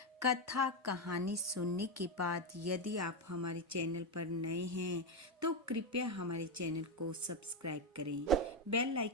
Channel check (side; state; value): both; normal; correlation 0.08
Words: कथा कहानी सुनने के बाद यदि आप हमारे चैनल पर नए हैं तो कृपया हमारे चैनल को सब्सक्राइब करें, बेल